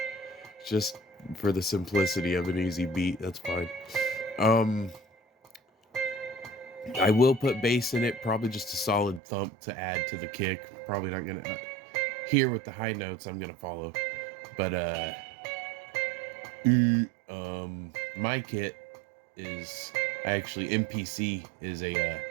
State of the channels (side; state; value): left; drops out; at 9.2 s